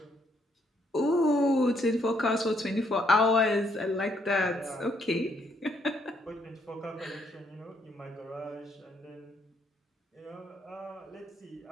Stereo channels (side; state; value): both; normal; correlation 0.71